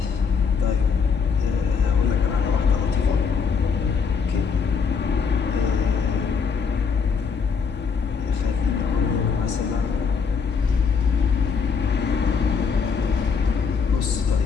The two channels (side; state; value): right; quieter; 5.8 dB